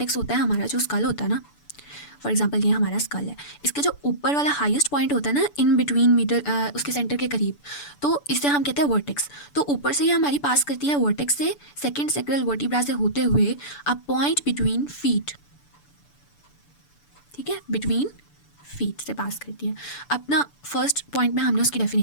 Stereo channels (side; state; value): right; late; 6.9 ms